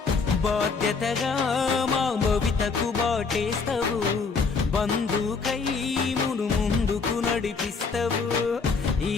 బాధ్యతగా మా భవితకు బాటేస్తావు. బంధుకై మును ముందుకు నడిపిస్తావు.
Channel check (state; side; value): quieter; right; 4.8 dB